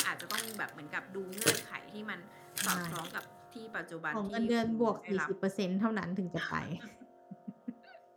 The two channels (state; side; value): identical; both; correlation 1.00